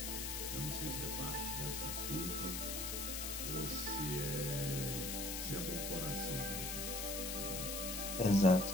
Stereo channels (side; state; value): left; noise; hiss, 3 dB below the sound